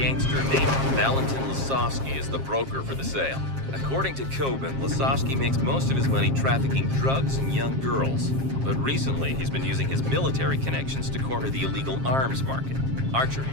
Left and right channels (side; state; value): left; late; 7.5 ms